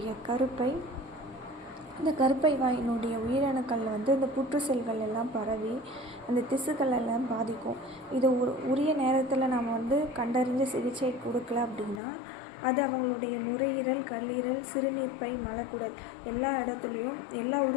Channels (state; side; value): drops out; right; at 12.0 s